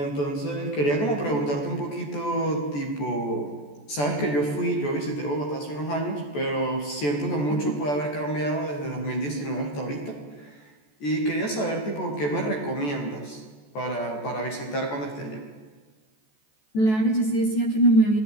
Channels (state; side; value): late; right; 14 ms